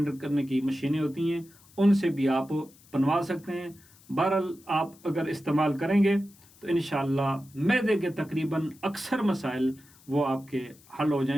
کرنے کی مشینیں ہوتی ہیں، ان سے بھی آپ بنوا سکتے ہیں۔ بہرحال آپ اگر استعمال کریں گے تو انشاءاللہ معدے کے تقریباً اکثر مسائل وہ آپ کے حل ہو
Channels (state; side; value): noise; left; hiss, 27 dB below the sound